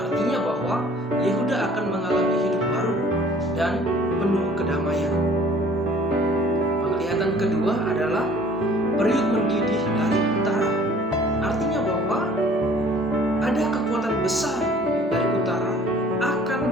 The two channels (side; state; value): both; normal; correlation 0.52